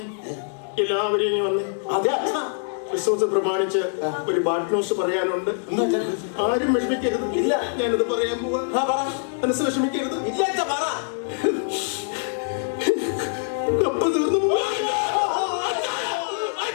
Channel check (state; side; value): silent; right; digital silence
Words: എല്ലാവരും ഇനി വന്നേ. അതെ അച്ഛാ ക്രിസ്മസ് പ്രമാണിച്ച് ഒരു ബാഡ് ന്യൂസ് പറയാനുണ്ട്. ആരും വിഷമിക്കരുത്. ഇല്ല ഞാനത് പറയാൻ പോവാ. മനസ്സ് വിഷമിക്കരുത്. ഇല്ല അച്ഛാ പറ. കപ്പ തീർന്നു പോവാ.